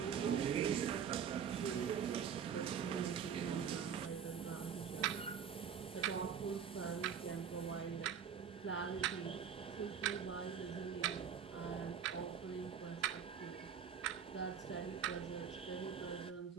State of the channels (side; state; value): left; quieter; 7.6 dB